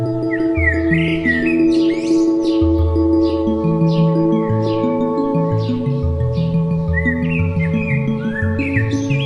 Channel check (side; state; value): both; identical; correlation 1.00